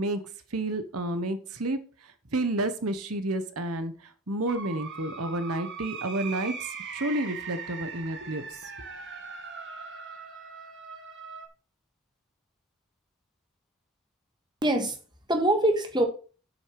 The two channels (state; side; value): normal; both; correlation 0.39